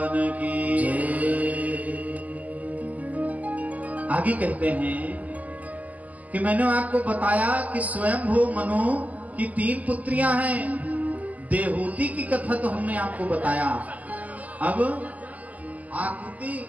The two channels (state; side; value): late; left; 0.077 ms